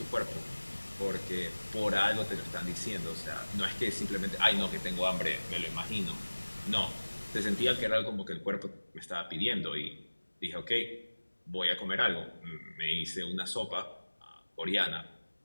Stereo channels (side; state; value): both; inverted; correlation -1.00